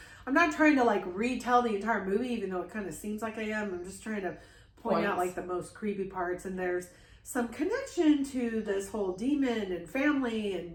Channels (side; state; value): both; identical; correlation 1.00